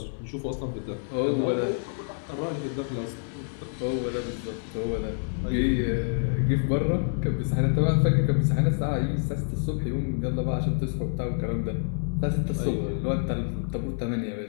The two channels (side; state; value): right; silent; 60 dB below the other